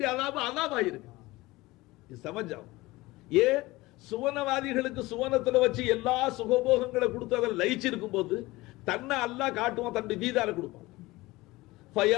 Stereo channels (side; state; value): right; quieter; 20.2 dB